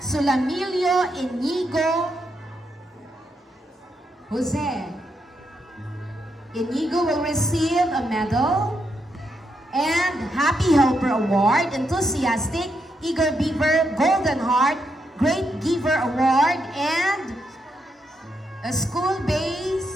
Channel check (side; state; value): both; normal; correlation 0.81